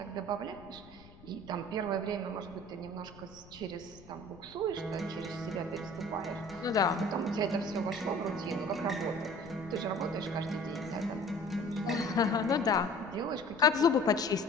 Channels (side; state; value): left; noise; rumble, 21 dB below the sound